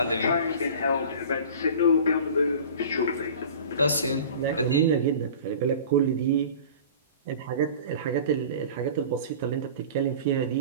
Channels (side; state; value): both; inverted; correlation -0.40